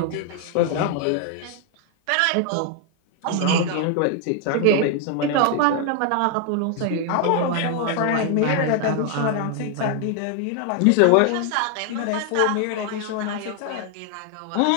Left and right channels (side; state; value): both; different; correlation 0.00